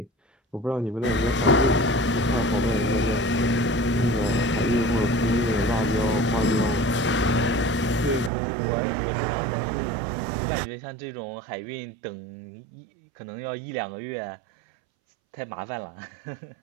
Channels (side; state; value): left; drops out; at 8.3 s